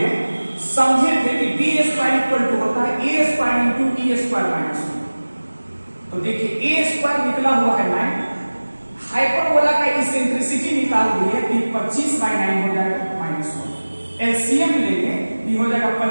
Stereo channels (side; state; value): both; inverted; correlation -1.00